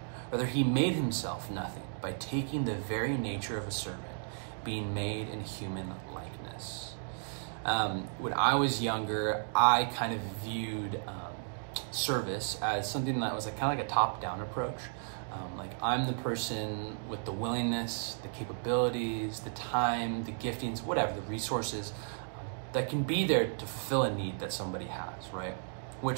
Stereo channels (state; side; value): silent; left; digital silence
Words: Rather, he made himself nothing by taking the very nature of a servant, being made in human likeness. When I was younger, I kind of viewed service as something that was kind of like a top-down approach. Like I'm the person with the willingness, the capabilities, the time, the giftings, whatever, the resources that can be there to fulfill a need that somebody has, right?